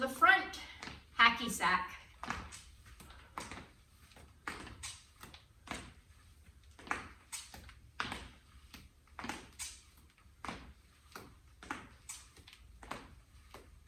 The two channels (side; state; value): both; identical; correlation 1.00